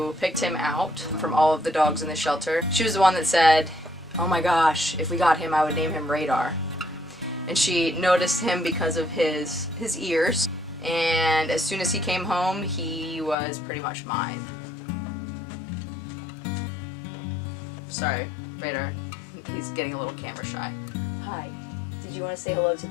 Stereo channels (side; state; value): right; drops out; at 13.4 s